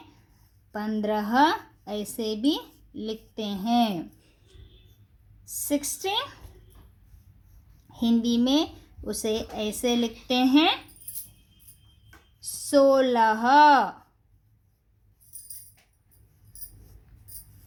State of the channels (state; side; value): identical; both; correlation 1.00